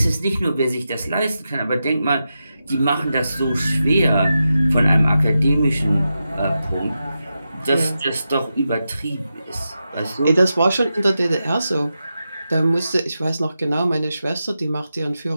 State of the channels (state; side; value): inverted; both; correlation -0.90